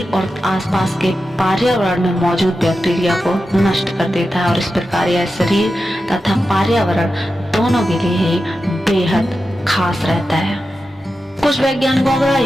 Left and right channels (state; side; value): normal; both; correlation 0.91